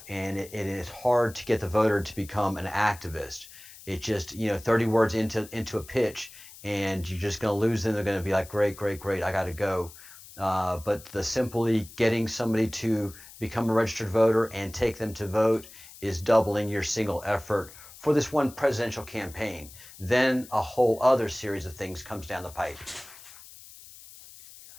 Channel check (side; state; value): left; noise; hiss, 19 dB below the sound